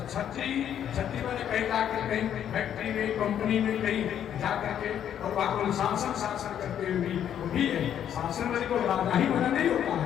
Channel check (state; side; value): quieter; right; 9.7 dB